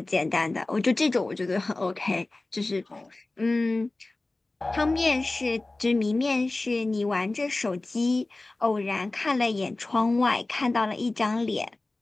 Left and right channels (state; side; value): quieter; right; 3.0 dB